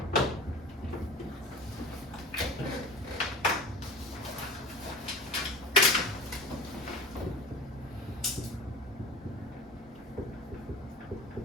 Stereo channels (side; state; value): both; normal; correlation 0.37